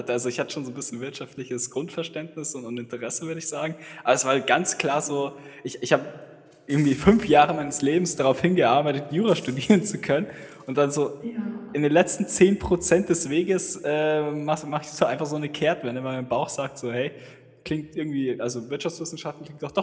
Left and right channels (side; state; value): both; identical; correlation 1.00